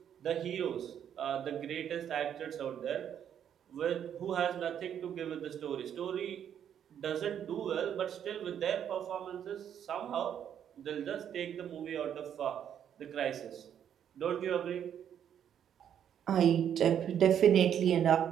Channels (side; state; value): left; quieter; 9.2 dB